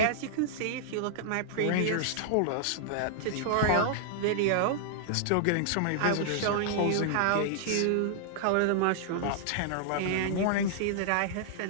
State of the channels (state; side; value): different; both; correlation -0.01